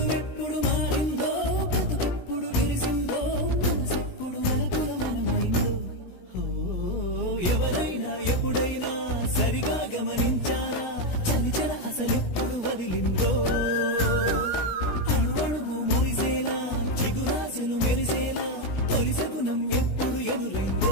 మారిందో బ్రతుకెప్పుడు విరిసిందో మనసెప్పుడు వలపుల మనమైందో ఎవరైనా ఎప్పుడైనా సరిగా గమనించారా చలిచల అసలెప్పుడు వదిలిందో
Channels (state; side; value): late; right; 16 ms